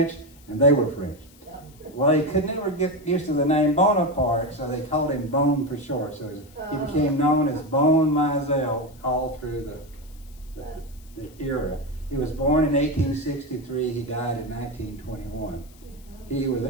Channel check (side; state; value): left; noise; hiss, 26 dB below the sound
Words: and they were French. Well, he could never get used to the name Bonaparte, so they called him Bone for short. So he became known as Bone Mizell all through the era. He was born in 1863. He died in 1921. He